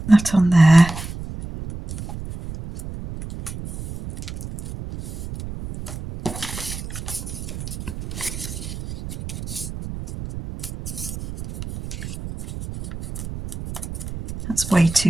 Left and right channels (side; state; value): right; noise; rumble, 9 dB below the sound